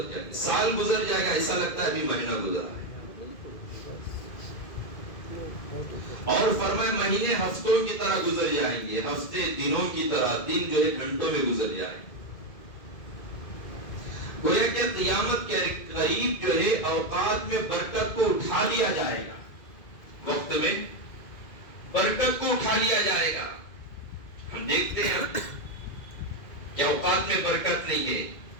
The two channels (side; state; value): right; late; 2.0 ms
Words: جائیں گے۔ سال گزر جائے گا، ایسا لگتا ہے ابھی مہینہ گزرا ہے۔ اور فرمائے مہینے ہفتوں کی طرح گزر جائیں گے، ہفتے دنوں کی طرح، دن جو ہے گھنٹوں میں گزر جائیں گے۔ گویا کہ قیامت کے قریب جو ہے اوقات میں برکت کو اٹھا لیا جائے گا، وقت میں برکت کو اٹھا لیا جائے گا۔ ہم دیکھتے ہیں کہ اوقات میں برکت نہیں ہے،